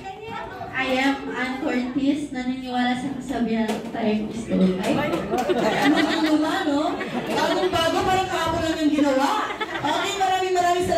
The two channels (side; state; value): both; identical; correlation 1.00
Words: I am Ann Curtis, naniniwala sa kasabihan tayong gusto. Ano, no? Bagong-bago, parang kahapon lang yung ginawa. Okay, maraming